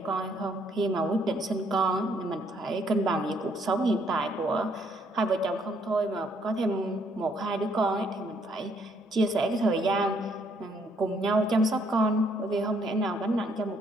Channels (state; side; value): normal; both; correlation 0.69